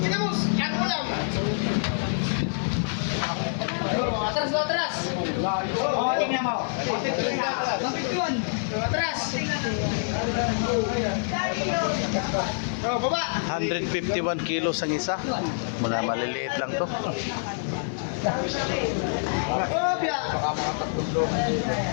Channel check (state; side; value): silent; right; 61 dB below the other